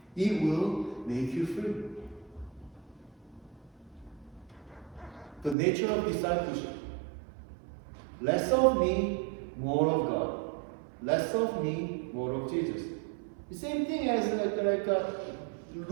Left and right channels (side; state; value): left; drops out; at 5.6 s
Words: It will make you free. The nature of discipleship. Less of me, more of God. Less of me, more of Jesus. The same thing as